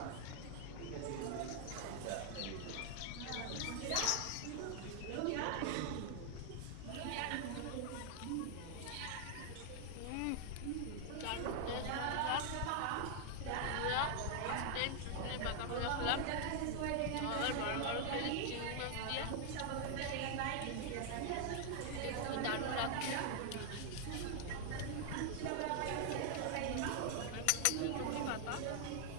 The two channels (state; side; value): different; both; correlation 0.00